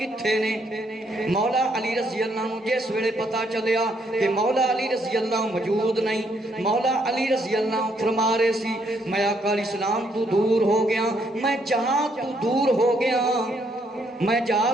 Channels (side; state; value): both; normal; correlation 0.72